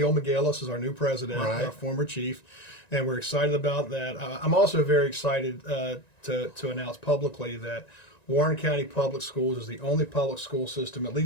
McGillis is our new president, our former chief, and we're excited about that. I'm also very excited to announce publicly that Warren County Public Schools is the only public school system, at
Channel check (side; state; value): right; late; 1.9 ms